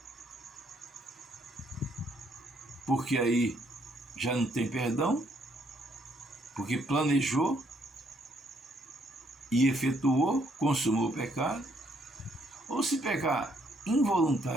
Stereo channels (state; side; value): normal; both; correlation 0.70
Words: porque aí já não tem perdão, porque planejou e efetuou, consumou o pecado, ou se pecar